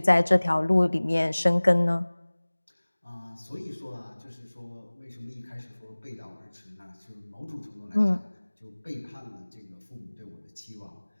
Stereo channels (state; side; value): inverted; both; correlation -1.00